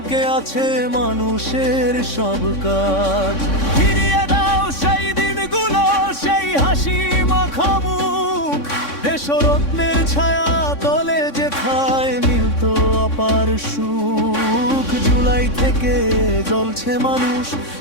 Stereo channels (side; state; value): right; late; 3.6 ms